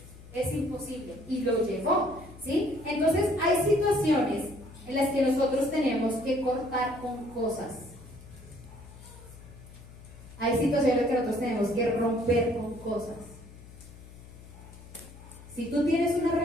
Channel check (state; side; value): noise; left; hum, 18 dB below the sound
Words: es imposible. Y lo llevó, ¿sí? Entonces hay situaciones en las que nosotros tenemos que cortar con cosas. Hay situaciones que nosotros tenemos que romper con cosas. Si tú tienes una